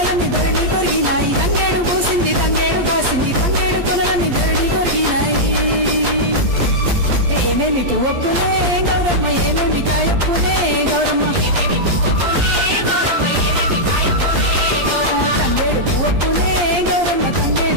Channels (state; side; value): late; left; 11 ms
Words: ధరణి కొరిగినాయి. తంగేడు పూసింది తంగేడు గాసింది, తంగేడు కొనలన్నీ ధరణి కొరిగినాయి. ఏమేమి పువ్వప్పునే గౌరమ్మ, ఏమేమి కాయప్పునే గౌరమ్మ. తంగేడు పువ్వప్పునే గౌరమ్మ,